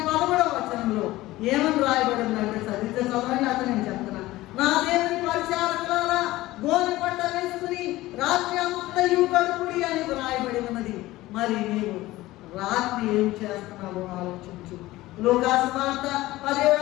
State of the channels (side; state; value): right; quieter; 17.6 dB